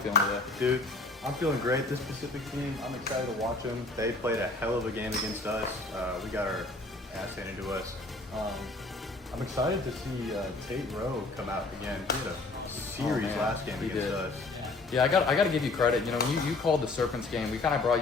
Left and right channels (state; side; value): quieter; right; 3.3 dB